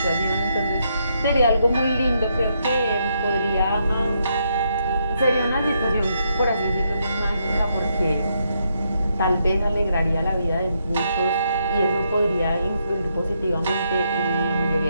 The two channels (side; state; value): both; inverted; correlation -0.78